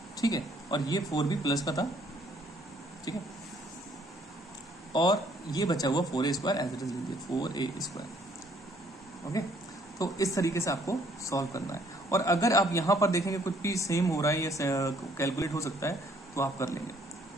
ठीक है। और ये 4b प्लस का था, ठीक है, और ये बचा हुआ 4a² एज इट इज लीजिए 4a², ओके। तो इस तरीके से आपको सॉल्व करना है। और अगर आप यहां पर देखेंगे कुछ भी सेम हो रहा है या कैलकुलेट हो सकता है तो आप कर लेंगे,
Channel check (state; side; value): normal; both; correlation 0.64